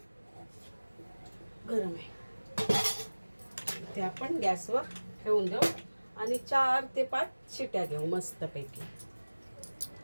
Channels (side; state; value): both; inverted; correlation -1.00